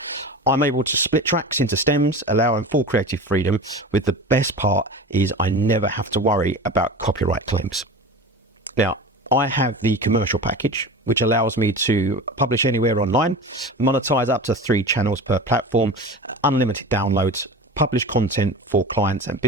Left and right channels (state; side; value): normal; both; correlation 0.32